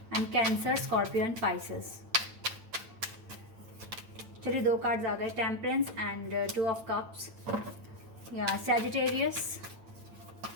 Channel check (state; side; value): late; left; 8.9 ms